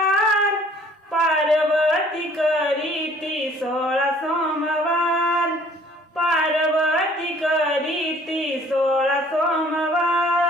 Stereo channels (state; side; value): normal; both; correlation 0.56